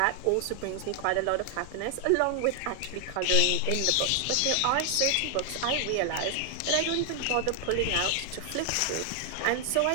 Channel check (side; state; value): both; different; correlation 0.00